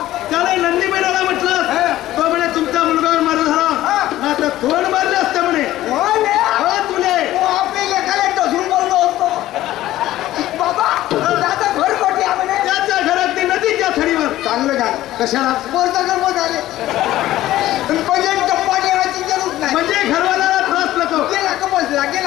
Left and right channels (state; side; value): quieter; right; 14.8 dB